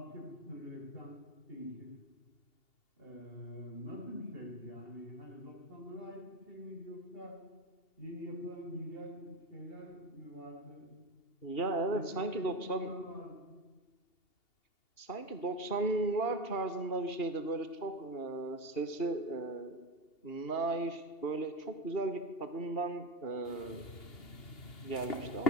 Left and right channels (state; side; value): late; right; 2.8 ms